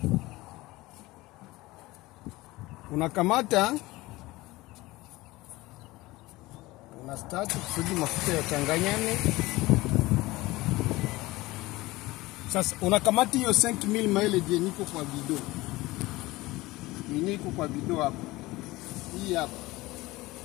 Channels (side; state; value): right; quieter; 19.8 dB